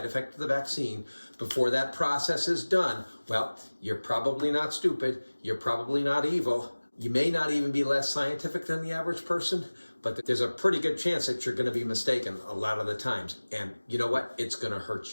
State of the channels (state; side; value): inverted; both; correlation -1.00